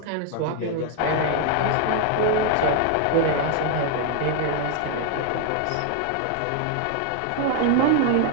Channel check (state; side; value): different; both; correlation 0.00